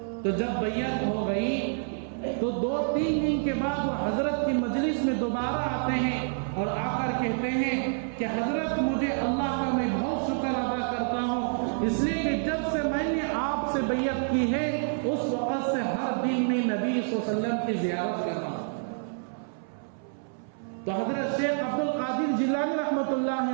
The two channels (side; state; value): left; silent; 59 dB below the other